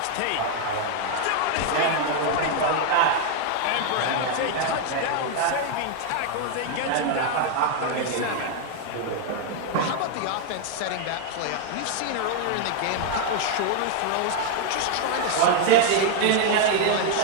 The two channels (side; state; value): both; different; correlation 0.00